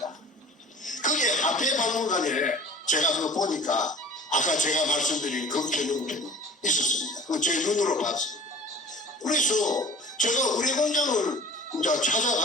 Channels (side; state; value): both; normal; correlation 0.44